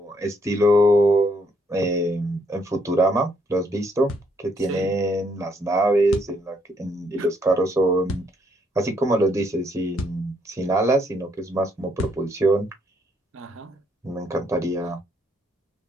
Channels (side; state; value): both; normal; correlation 0.71